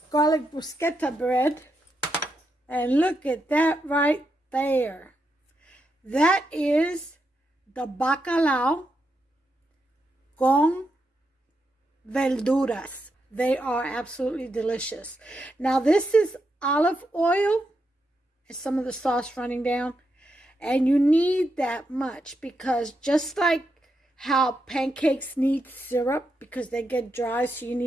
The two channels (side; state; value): both; normal; correlation 0.83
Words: garlic bruschetta bread, and look at that right there. That is the bacalao con verduras. They are absolutely delicious. Now this is olive oil and some of the sauce running down. And you need that much because just like how pancakes need syrup because they get dry, so you